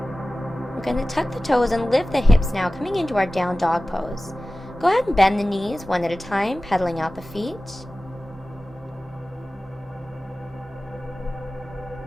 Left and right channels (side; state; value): both; normal; correlation 0.96